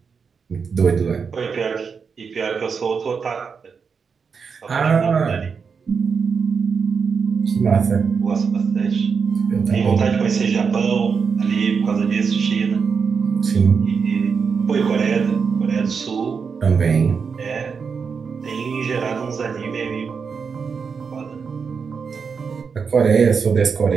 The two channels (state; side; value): quieter; left; 5.8 dB